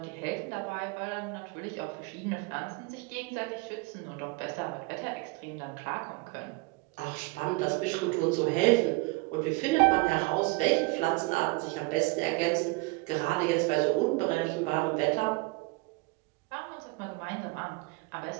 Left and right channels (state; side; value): quieter; left; 26.3 dB